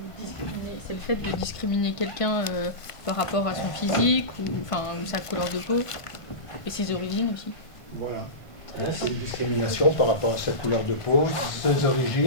le fait de discriminer quelqu'un par rapport à son physique ou sa couleur de peau et ses origines aussi. Voilà. C'est une discrimination par rapport à sa couleur de peau, ses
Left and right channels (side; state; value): right; late; 1.5 ms